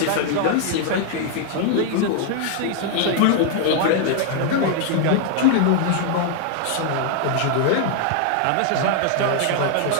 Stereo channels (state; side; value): different; both; correlation 0.00